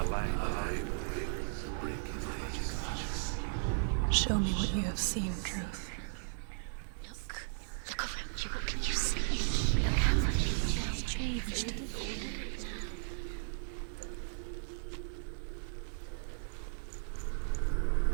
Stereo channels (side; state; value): left; silent; digital silence